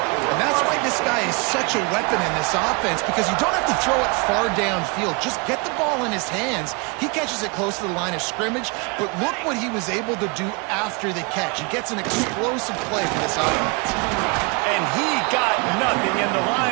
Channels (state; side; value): quieter; left; 30.9 dB